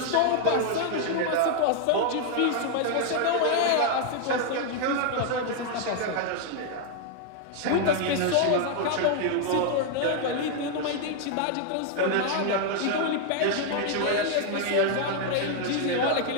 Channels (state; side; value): different; both; correlation 0.00